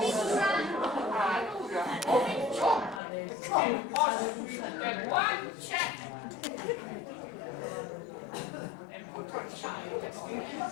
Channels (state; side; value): drops out; right; at 3.0 s